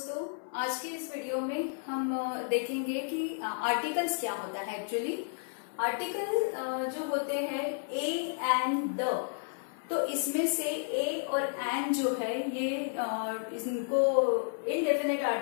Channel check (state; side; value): silent; right; 56 dB below the other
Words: आज की इस वीडियो में हम देखेंगे कि आर्टिकल्स क्या होता है। एक्चुअली आर्टिकल जो होते हैं ए एंड द, तो इसमें से ए और एंड जो है ये इनको इनडेफिनेट